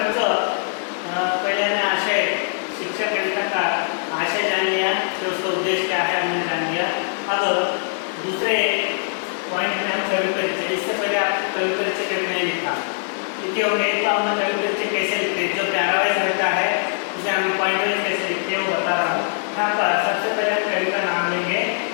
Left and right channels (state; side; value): silent; right; digital silence